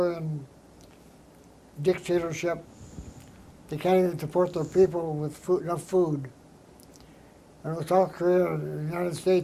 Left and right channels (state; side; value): identical; both; correlation 1.00